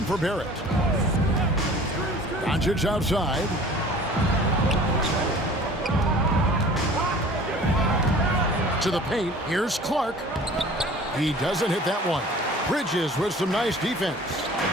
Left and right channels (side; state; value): both; normal; correlation 0.46